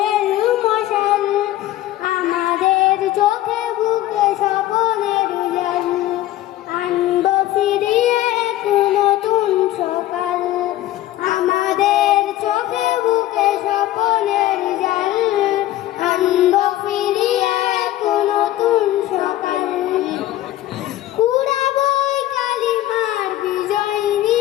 মশাল, আমাদের চোখে বুকে স্বপনের জাল, আনব ফিরিয়ে এক নতুন সকাল, আমাদের চোখে বুকে স্বপনের জাল, আনব ফিরিয়ে এক নতুন সকাল, কুড়াবই কালিমার বিজয়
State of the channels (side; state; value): right; quieter; 14.5 dB